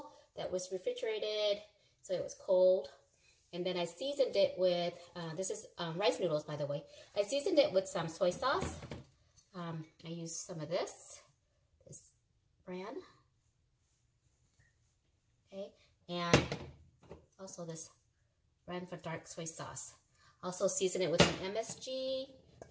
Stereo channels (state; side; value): identical; both; correlation 1.00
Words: that was refrigerated, so it was cold. And then I seasoned it with, this is rice noodles by the way. I seasoned it with some soy sauce. I used some of this brand. Okay, and also this brand for dark soy sauce. Also season it with some MSG,